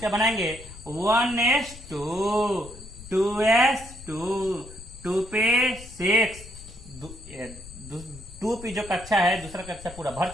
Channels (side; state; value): left; noise; rumble, 16 dB below the sound